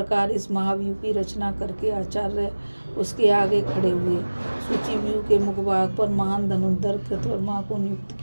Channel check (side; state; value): both; inverted; correlation -1.00